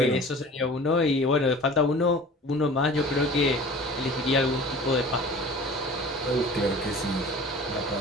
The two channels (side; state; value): both; normal; correlation 0.42